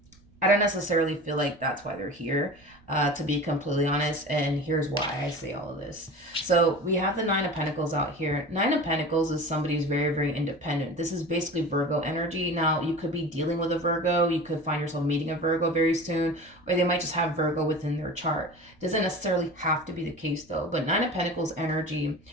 don't necessarily feel like that's why they're here, to be completely honest. And here's why I say all of this. So we have the Nine of Pentacles out here. Nine of Pentacles is somebody who's very, very independent. This is basically Virgo energy. Now, you could be dealing with a Virgo. You could find yourself meeting a Virgo very soon, or they might just have Virgo within their chart. Doesn't necessarily have to be the case, though. But Nine of Pentacles energy,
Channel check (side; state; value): right; noise; rumble, 29 dB below the sound